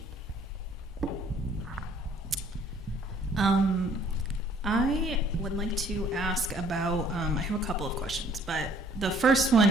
I would like to ask about, I have a couple of questions, but the first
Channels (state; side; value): normal; both; correlation 0.59